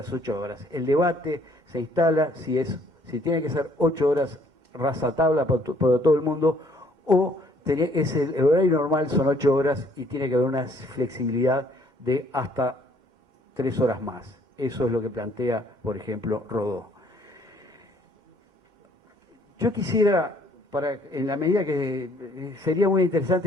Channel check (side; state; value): left; late; 2.1 ms